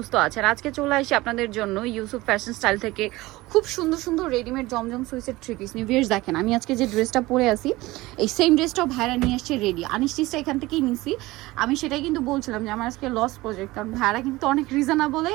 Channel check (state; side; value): quieter; left; 19.6 dB